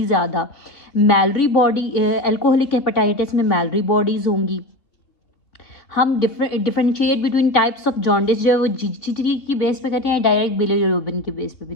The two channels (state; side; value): late; right; 3.2 ms